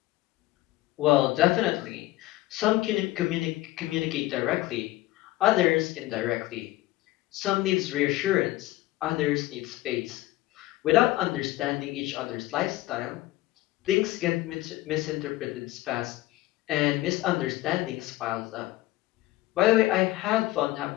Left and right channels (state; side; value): quieter; right; 17.4 dB